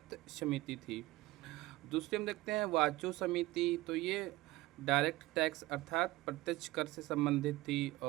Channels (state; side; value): quieter; left; 18.8 dB